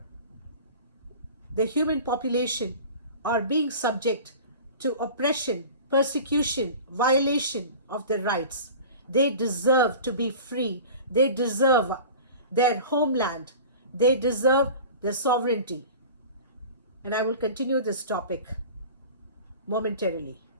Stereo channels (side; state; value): both; inverted; correlation -0.38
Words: the human population are being subject to oppression, persecution, violation of their rights. They deserve to be free. They deserve their homeland. They deserve their sovereignty. And I will continue this topic momentarily.